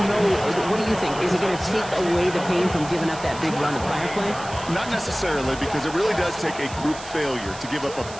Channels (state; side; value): noise; right; hiss, 15 dB below the sound